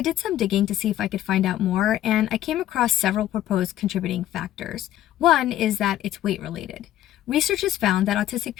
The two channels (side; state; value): right; quieter; 12.8 dB